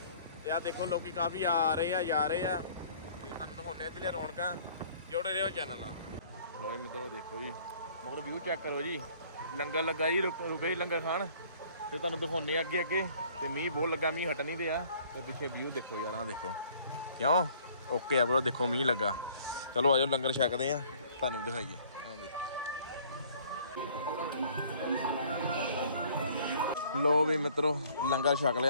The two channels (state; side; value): inverted; both; correlation -0.56